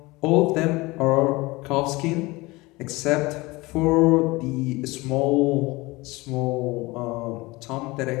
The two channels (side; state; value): right; quieter; 22.3 dB